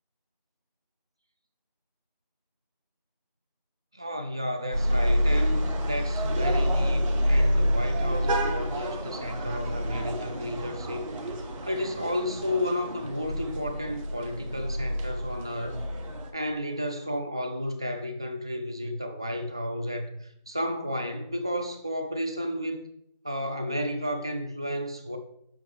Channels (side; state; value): both; inverted; correlation -0.85